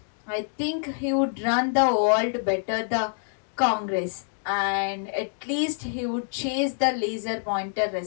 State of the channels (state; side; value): silent; right; digital silence